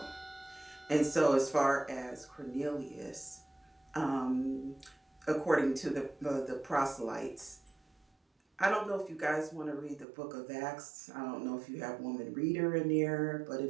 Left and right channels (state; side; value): drops out; left; at 10.1 s